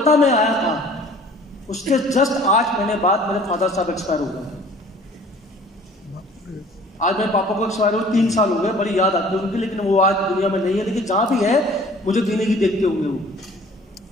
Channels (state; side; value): normal; both; correlation 0.51